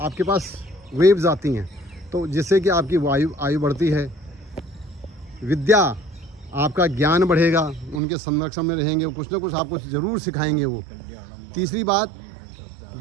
पास वेव्स आती हैं, तो जिससे कि आपकी आयु बढ़ती है। विद्या, आपका ज्ञान बढ़ेगा, उनके संरक्षण में रहेंगे, कुछ ना कुछ आपको ज़रूर सिखाएंगे वो। तीसरी बात,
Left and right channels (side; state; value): left; drops out; at 8.0 s